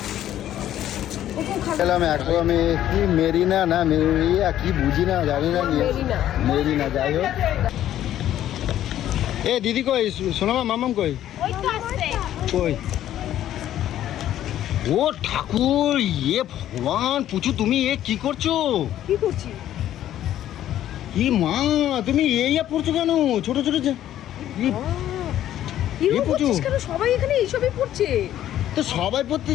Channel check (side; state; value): right; quieter; 12.1 dB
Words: ওকেও খাবিয়ে খেলাম এখন আমি, কি মেরিনা না মেরিয়া কি বুঝি না, জানি না। মেরিনা। মেরিনা, যাই হোক। এ দিদি কই? সোনামা, মামাম কই? ওই তো আসছে। কই? ও ঠাকুর, ইয়ে ভগবান, পুচু তুমি এ কি করছো? কি করছি? কি মা, তুমি এই পড়ছো কেন? ছোট ছোট এরকম পুচু। করছিস কেন? সবাই এখানে এইসবই পড়ছে। তো সবাই